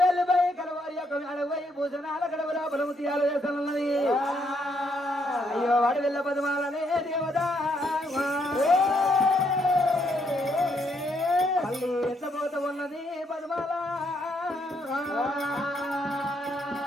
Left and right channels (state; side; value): normal; both; correlation 0.74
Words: వెళ్ళిపోయి కలవారి యొక్క అడవై భూషణాల గడవల బలము తీయాలు చేస్తున్నది అయ్యో వాడి వెళ్ళ పదమాలనే దేవత మళ్ళీ ఎత్తపోత ఉన్నది పదమాల